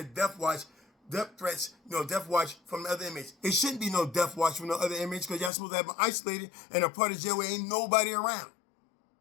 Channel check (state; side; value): drops out; right; at 5.5 s